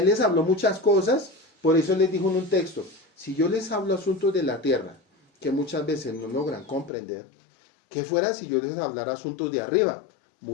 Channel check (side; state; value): right; drops out; at 6.9 s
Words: les habló muchas cosas, por eso les dijo en un texto, si yo les hablo asuntos de la tierra, que muchas veces no logran comprender, ¿qué fuera si yo les hablara asuntos de arriba?